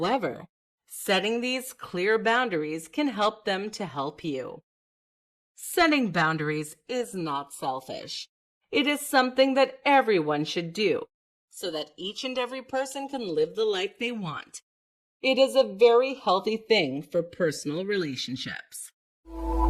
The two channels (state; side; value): identical; both; correlation 1.00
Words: setting these clear boundaries can help them to help you. Setting boundaries is not selfish. It is something that everyone should do so that each and every person can live the life they want. It is a very healthy thing for personal relationships.